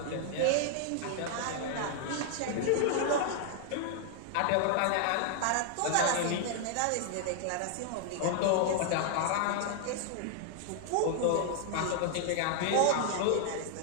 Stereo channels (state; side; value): different; both; correlation 0.00